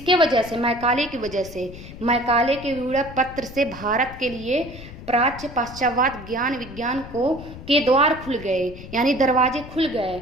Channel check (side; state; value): left; noise; rumble, 14 dB below the sound